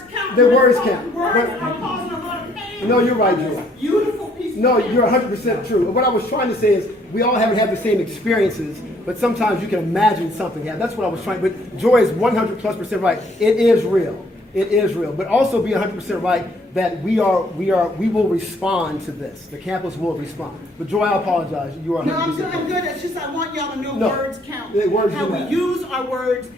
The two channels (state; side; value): normal; both; correlation 0.65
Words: count. The words count. Words are causing a lot of pain. No, you're right, Joy. Beautiful piece. No, you're 100% true. What I was trying to say is we all haven't had the same experiences, but sometimes you can imagine something. Yeah, that's what I was trying. But Joy is 100+% right. It is real. It is real. But also be 100% right that we will respond to this. The campus will respond. But Joy, I apologize. You are 100% No, I'm good. It's just I want y'all to know words count. Words How we use our words